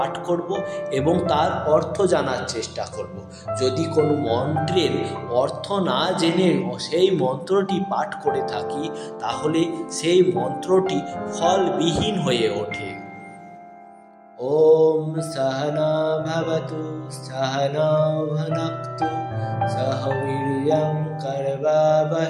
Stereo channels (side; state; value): both; identical; correlation 1.00